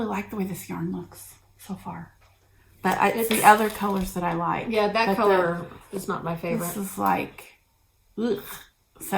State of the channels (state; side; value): identical; both; correlation 1.00